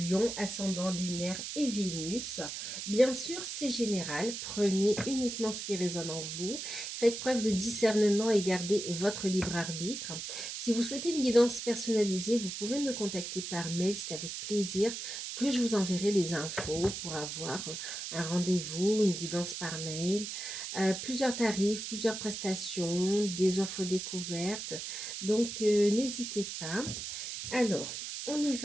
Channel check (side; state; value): right; noise; hiss, 6 dB below the sound